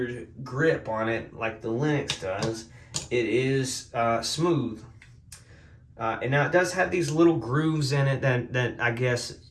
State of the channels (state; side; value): identical; both; correlation 1.00